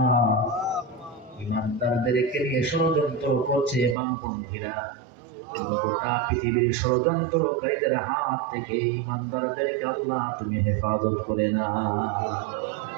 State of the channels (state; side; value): drops out; left; at 4.0 s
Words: ঈমানদারদেরকে নিয়ে ষড়যন্ত্র করছে বামপন্থীরা। গোটা পৃথিবীর ষড়যন্ত্রকারীদের হাত থেকে ঈমানদারদেরকে আল্লাহ তুমি হেফাজত করে না।